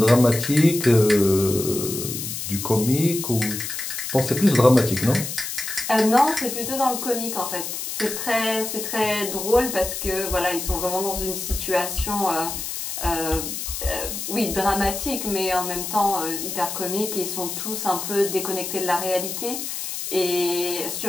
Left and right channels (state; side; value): noise; left; hiss, 5 dB below the sound